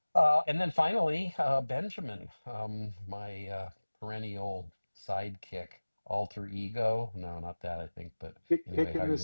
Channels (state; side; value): inverted; both; correlation -1.00